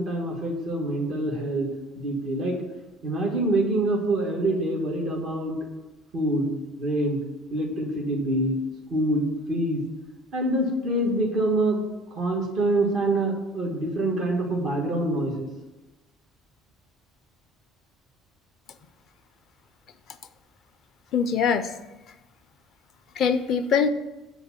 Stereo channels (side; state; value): both; normal; correlation 0.46